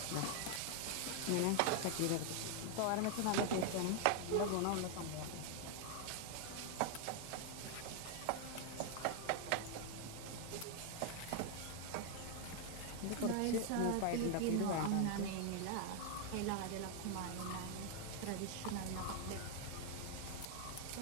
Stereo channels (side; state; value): both; different; correlation 0.00